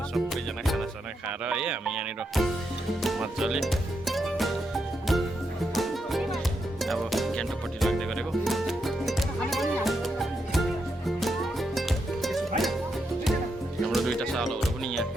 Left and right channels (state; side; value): normal; both; correlation 0.82